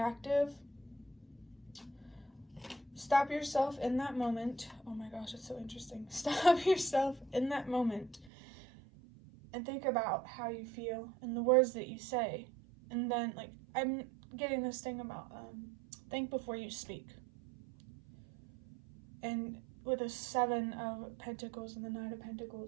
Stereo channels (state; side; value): drops out; left; at 8.3 s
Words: stop yourself in that moment. Oh my gosh, it's so interesting. Stop yourself in that moment and think about how you feel and the words that you say. And then, like, I'm getting this thing about think before you speak. And with the Seven of Pentacles and the Knight of